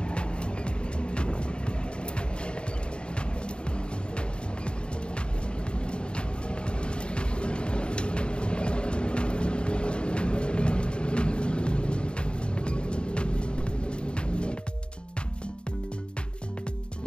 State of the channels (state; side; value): late; right; 0.052 ms